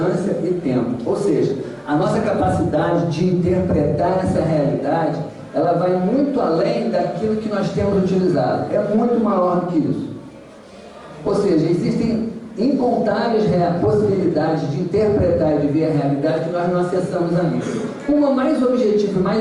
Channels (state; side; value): identical; both; correlation 1.00